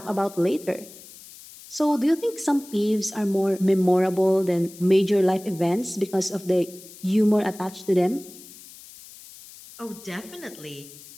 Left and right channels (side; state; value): left; noise; hiss, 19 dB below the sound